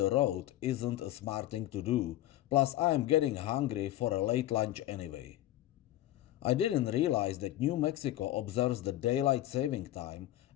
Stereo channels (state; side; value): quieter; right; 14.2 dB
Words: road isn't a smart thing to do, plus I am getting hungry for a late lunch anyway. I didn't realize that New Mexico observes the daylight saving time